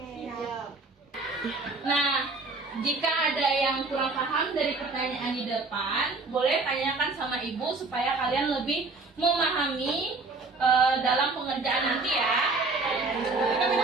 Nah, jika ada yang kurang paham dari pertanyaan di depan, boleh tanyakan sama Ibu supaya kalian lebih memahami dalam pengerjaan nanti ya.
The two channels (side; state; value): left; quieter; 3.6 dB